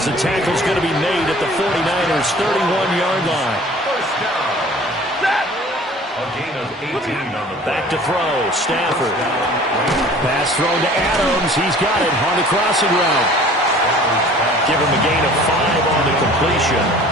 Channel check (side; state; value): both; normal; correlation 0.48